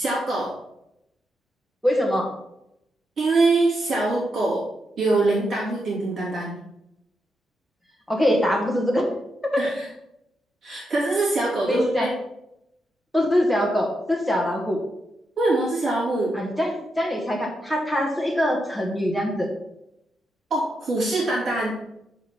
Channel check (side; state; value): both; normal; correlation 0.84